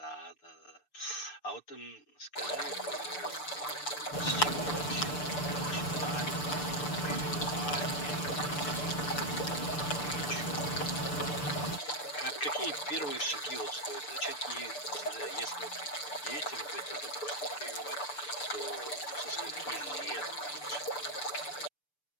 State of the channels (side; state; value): right; late; 6.8 ms